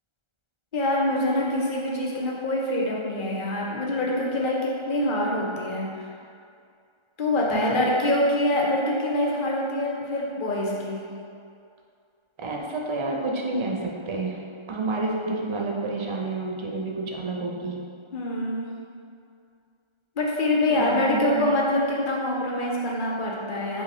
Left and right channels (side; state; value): left; late; 1.3 ms